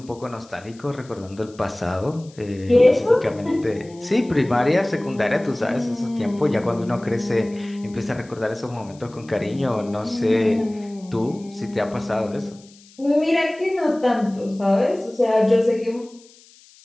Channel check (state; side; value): noise; left; hiss, 26 dB below the sound